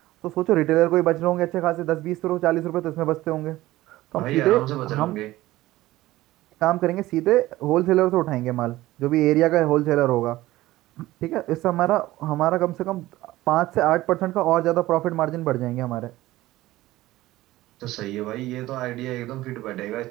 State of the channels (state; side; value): quieter; left; 16.9 dB